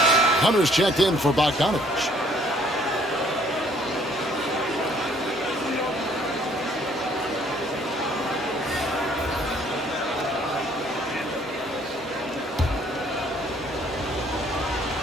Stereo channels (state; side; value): normal; both; correlation 0.61